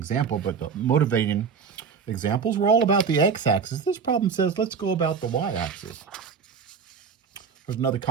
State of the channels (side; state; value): left; quieter; 6.1 dB